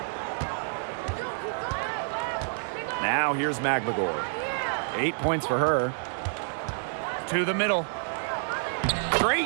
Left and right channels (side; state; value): left; silent; 59 dB below the other